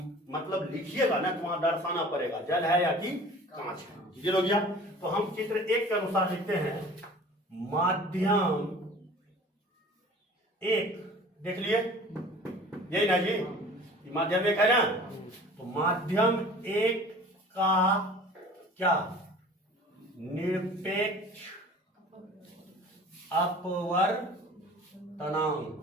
मतलब लिखिएगा ना तो वहां दर्शाना पड़ेगा जल है या कि कांच है। क्लियर हो गया? तो हम चित्र 1 के अनुसार लिखते हैं माध्यम 1। देख लिए यही ना जी, माध्यम 1 है ना? तो माध्यम 1 का क्या? निरपेक्ष अपवर्तनांक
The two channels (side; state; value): both; normal; correlation 0.44